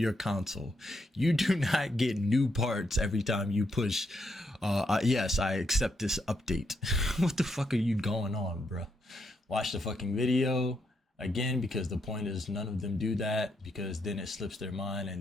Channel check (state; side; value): normal; both; correlation 0.79